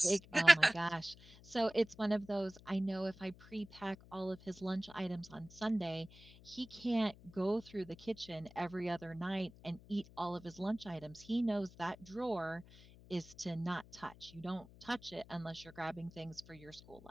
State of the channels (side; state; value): left; noise; hum, 21 dB below the sound